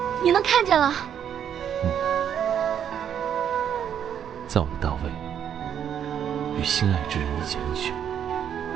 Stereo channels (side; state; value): left; quieter; 9.0 dB